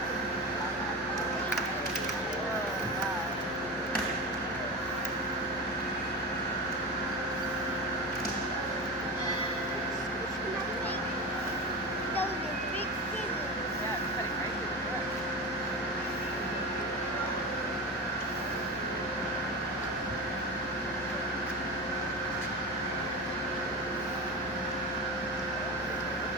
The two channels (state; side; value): normal; both; correlation 0.25